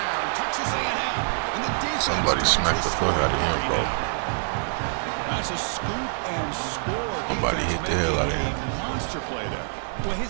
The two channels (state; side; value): silent; left; 61 dB below the other